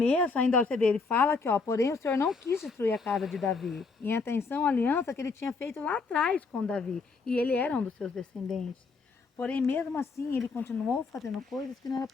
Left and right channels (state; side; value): quieter; right; 4.4 dB